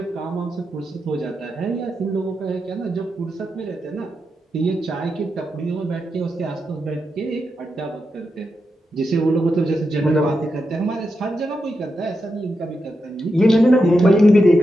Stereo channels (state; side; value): normal; both; correlation 0.87